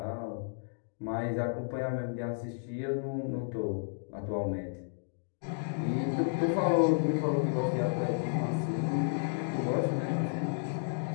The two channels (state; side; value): silent; right; digital silence